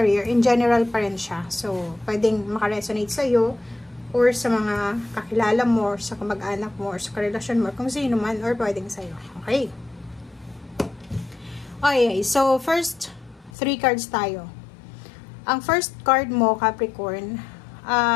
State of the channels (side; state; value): right; drops out; at 13.5 s